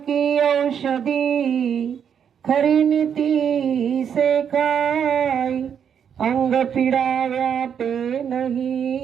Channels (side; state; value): left; quieter; 8.0 dB